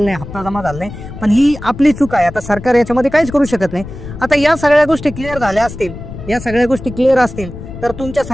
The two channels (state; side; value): noise; left; rumble, 12 dB below the sound